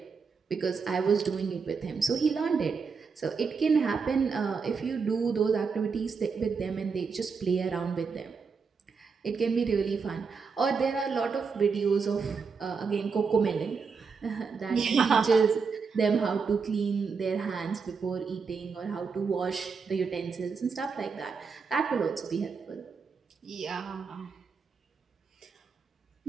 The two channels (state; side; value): quieter; left; 5.3 dB